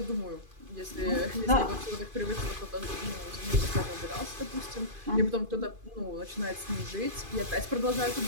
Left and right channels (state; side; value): late; left; 2.5 ms